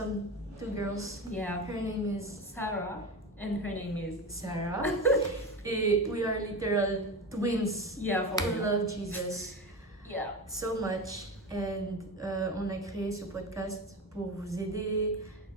two girls. Yeah. Her name is Sarah, and her name is. Sarah. Et we are literal twins. Yeah, for We real. love Jesus Yeah. so much. And on a créé ce podcast pour vous aider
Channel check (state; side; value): normal; both; correlation 0.25